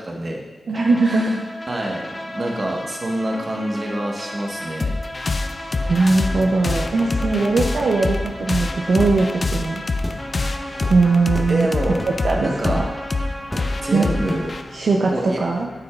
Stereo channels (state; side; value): normal; both; correlation 0.91